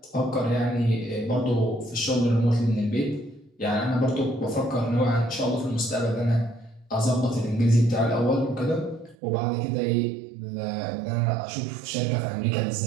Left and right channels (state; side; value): drops out; left; at 9.2 s